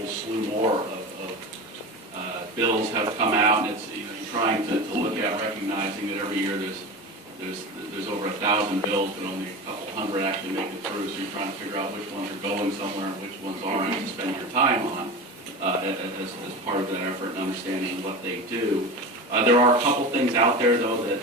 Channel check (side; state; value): both; normal; correlation 0.28